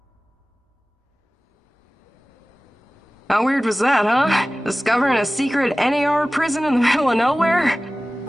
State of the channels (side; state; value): both; normal; correlation 0.97